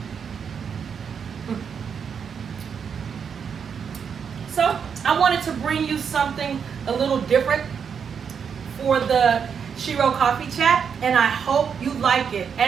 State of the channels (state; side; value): quieter; left; 6.9 dB